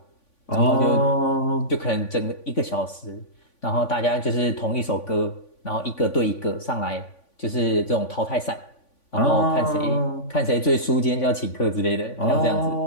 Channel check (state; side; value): late; right; 3.5 ms